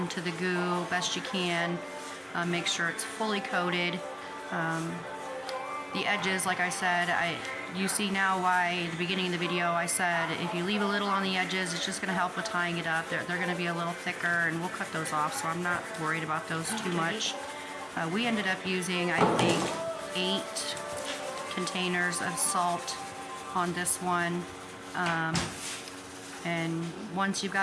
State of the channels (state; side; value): identical; both; correlation 1.00